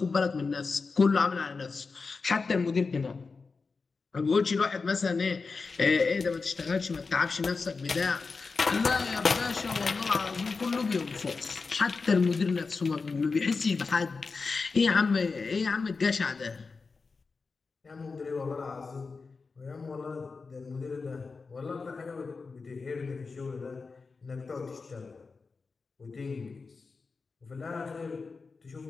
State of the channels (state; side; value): quieter; right; 4.5 dB